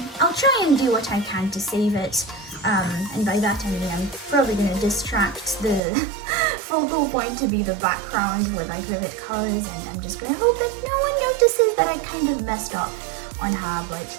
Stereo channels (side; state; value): left; drops out; at 5.8 s